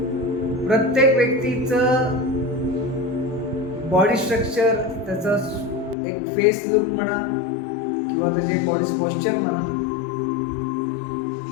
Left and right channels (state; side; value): drops out; right; at 6.0 s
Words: प्रत्येक व्यक्तीचं बॉडी स्ट्रक्चर, त्याचं एक फेस लुक म्हणा किंवा त्याचे बॉडी पोश्चर म्हणा,